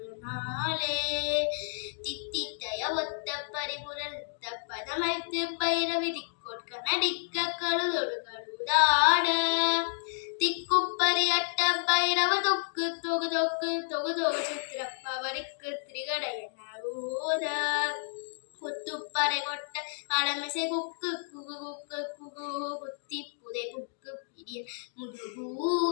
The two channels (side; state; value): right; silent; digital silence